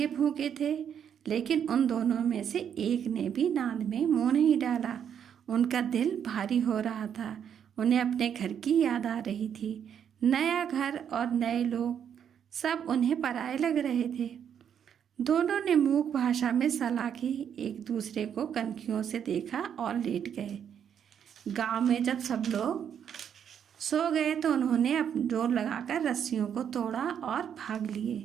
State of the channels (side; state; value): left; quieter; 8.5 dB